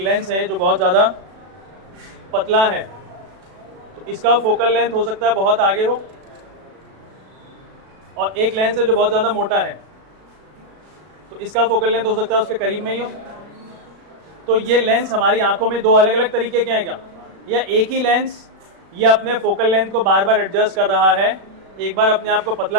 है जो बहुत ज़्यादा पतला है, तो इसका फोकल लेंथ हो सकता है बहुत आगे हो, और एक लेंस है जो बहुत ज़्यादा मोटा है, तो इसका फोकल लेंथ हो सकता है उसके करीब में ही हो। तो ये लेंस हमारी आंखों में दो अलग अलग तरीके के हैं क्या, या एक ही लेंस ये अपने फोकल लेंथ को बार बार एडजस्ट कर रहा है, एक बार अपने आप को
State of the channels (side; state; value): left; late; 36 ms